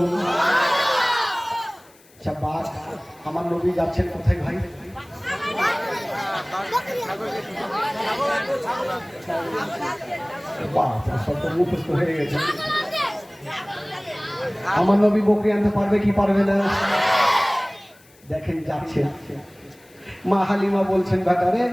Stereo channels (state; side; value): noise; left; hiss, 28 dB below the sound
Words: আচ্ছা বাঘ, আমার নবী যাচ্ছেন কোথায় ভাই? মুখস্থ হয়ে গেছে। আমার নবী বকরি আনতে পারবে কি পারবে না? দেখেন যাচ্ছে। মা হালিমা বলছেন বেটারে